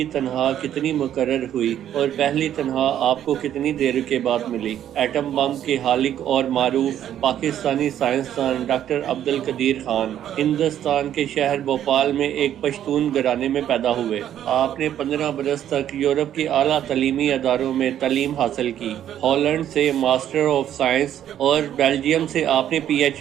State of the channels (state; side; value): quieter; left; 10.8 dB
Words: تنخواہ کتنی مقرر ہوئی اور پہلی تنخواہ آپ کو کتنی دیر کے بعد ملی؟ ایٹم بم کے خالق اور معروف پاکستانی سائنسدان ڈاکٹر عبدالقدیر خان ہندوستان کے شہر بھوپال میں ایک پشتون گھرانے میں پیدا ہوئے۔ آپ نے 15 برس تک یورپ کے اعلیٰ تعلیمی اداروں میں تعلیم حاصل کی۔ ہالینڈ سے ماسٹر آف سائنس اور بیلجیم سے آپ نے پی ایچ